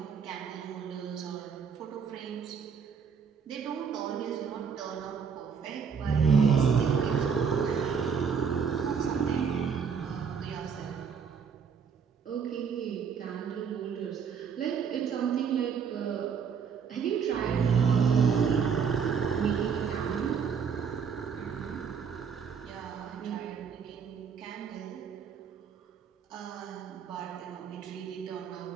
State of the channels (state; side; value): quieter; left; 6.5 dB